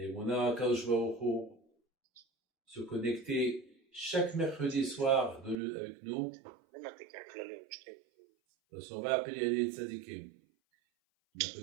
Kadosh Baruch Hu, se connecter chaque mercredi soir avec nous. Donc on va appeler les tzadikim.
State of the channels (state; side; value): drops out; left; at 5.6 s